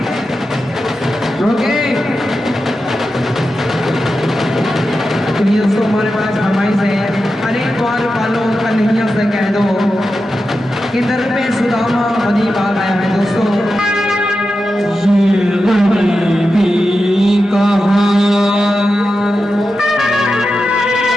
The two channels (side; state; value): both; normal; correlation 0.90